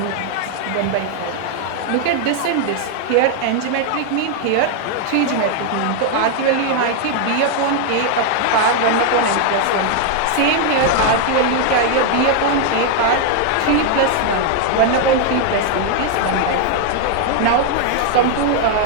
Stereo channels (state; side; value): different; both; correlation 0.00